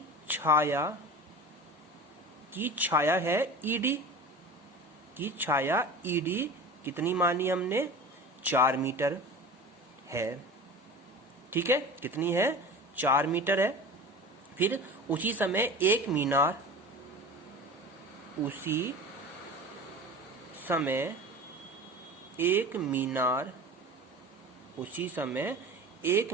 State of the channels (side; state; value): both; normal; correlation 0.35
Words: छाया है ED, की छाया ED कितनी मानी हमने, 4 मीटर है, ठीक है। कितनी है, 4 मीटर है। फिर उसी समय एक